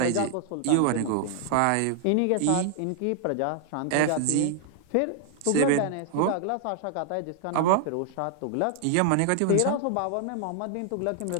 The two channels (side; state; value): both; different; correlation 0.00